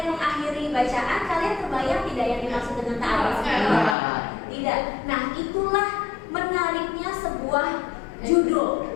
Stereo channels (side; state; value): right; drops out; at 4.0 s